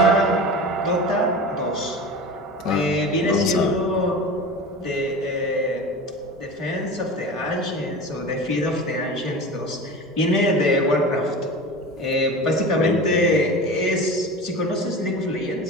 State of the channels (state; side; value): normal; both; correlation 0.32